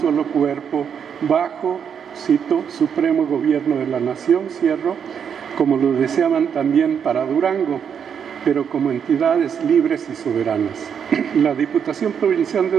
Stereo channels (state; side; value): quieter; left; 7.6 dB